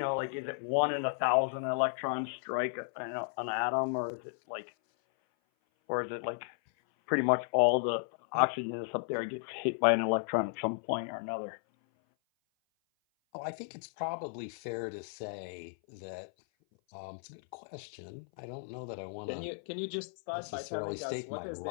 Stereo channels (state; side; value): silent; right; 55 dB below the other